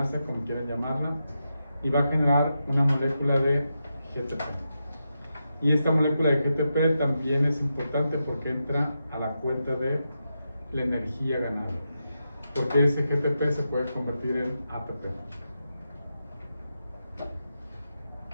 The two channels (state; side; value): inverted; both; correlation -0.87